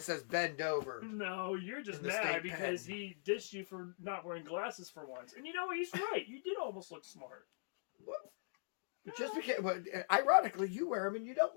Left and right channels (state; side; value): silent; right; digital silence